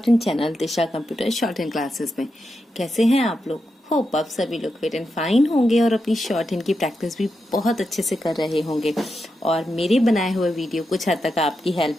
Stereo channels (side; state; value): both; normal; correlation 0.87